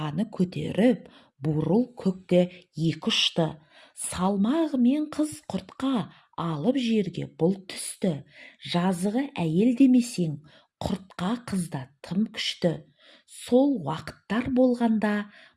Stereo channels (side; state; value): both; identical; correlation 1.00